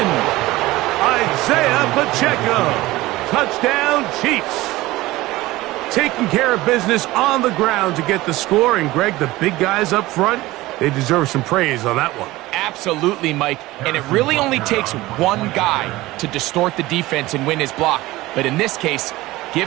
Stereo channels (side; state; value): left; quieter; 18.5 dB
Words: I'd Isaiah Pacheco. Touchdown, Chiefs. Taking care of business on the ground to get the score. And, Greg, the big guys up front, they deserve some praise on that one. Absolutely, Mike. And it really only takes one guy to distort the defense and win his block. But in this case,